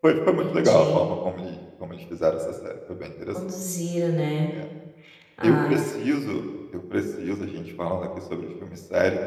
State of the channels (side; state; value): both; identical; correlation 1.00